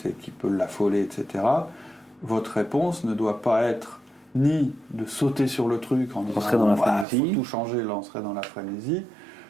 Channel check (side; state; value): left; drops out; at 7.1 s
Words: et qui peut l'affoler, etc., votre réponse ne doit pas être ni de sauter sur le truc en disant « il faut tout changer, là on serait dans la frénésie